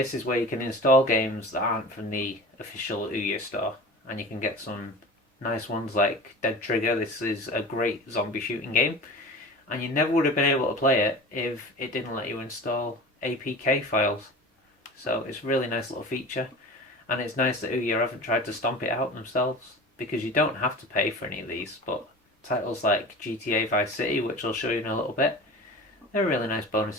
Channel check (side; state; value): both; normal; correlation 0.36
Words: is where you can install games that aren't from the official Ouya store, and you can get some nice ones like Dead Trigger. This is a great zombie shooting game, and you never would have been able to play it if it didn't let you install APK files. So it's a really nice little feature, and it's nice that Ouya haven't tried to stomp it out themselves, because you don't have to pay for any of these, but titles like GTA Vice City, which I'll show you in a little bit, they're really nice